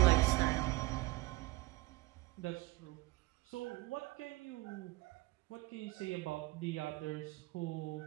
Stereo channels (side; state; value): left; quieter; 20.9 dB